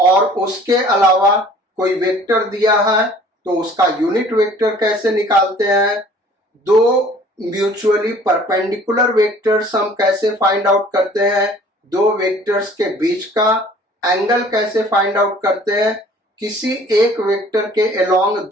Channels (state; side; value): normal; both; correlation 0.52